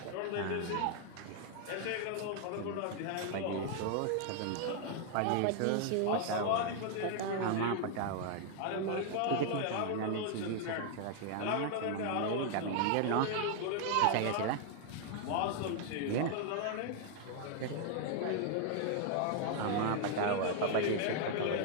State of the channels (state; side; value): different; both; correlation 0.00